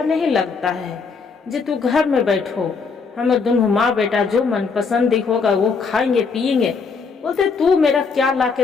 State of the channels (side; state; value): right; quieter; 5.0 dB